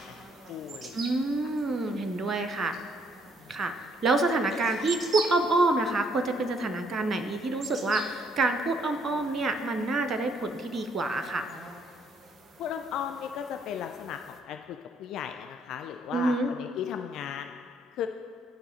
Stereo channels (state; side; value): normal; both; correlation 0.68